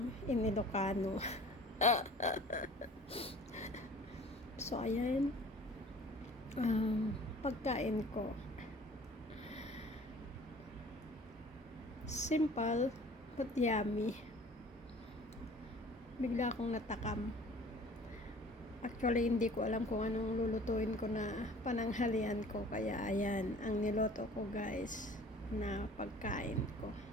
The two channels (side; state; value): both; normal; correlation 0.47